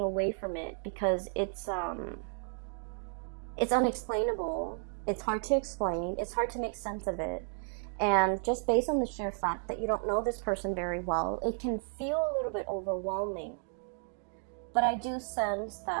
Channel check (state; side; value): silent; left; 56 dB below the other